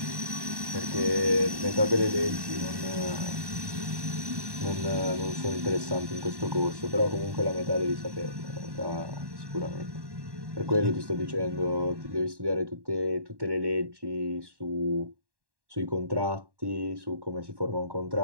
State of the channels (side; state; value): left; late; 1.1 ms